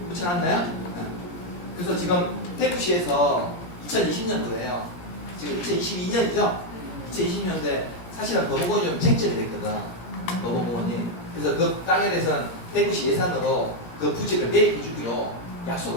붙여놨나요? 그래서 지금 대구시에서 2020년도에요. 지금 2022년이죠? 2020년도에 사실은 범어공원이 좀 쟁점이 됐거든. 범어공원이. 그래서 그 땅에 대해서는 대구시 예산으로 그 부지를 매입해 주기로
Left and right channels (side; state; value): right; late; 17 ms